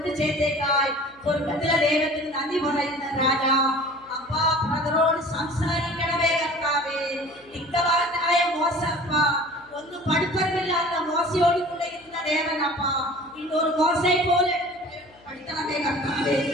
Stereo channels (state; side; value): noise; left; hum, 29 dB below the sound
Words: ചെയ്തേക്കായി സ്വർഗത്തിലെ ദൈവത്തിന് നന്ദി പറയുന്ന രാജാ. അപ്പാ ബ്രദറോട് സംസാരിക്കണമേ കർത്താവേ. ഇക്കവാനായ മോശപ്പ ഒന്നും പഠിപ്പറിവില്ലാത്ത മോശയോട് കൂടെ ഇരുന്ന ദേവനപ്പ ഇന്നൊരു മോശയെ പോലെ പഠിക്കണമേ കർത്താവേ.